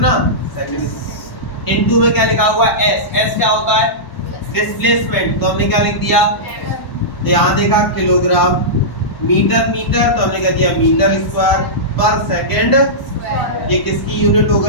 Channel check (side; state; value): right; late; 1.1 ms